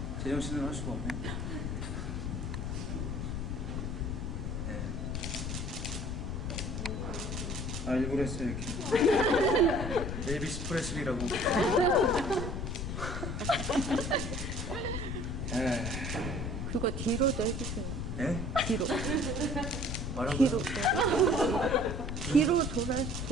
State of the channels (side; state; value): left; noise; rumble, 3 dB below the sound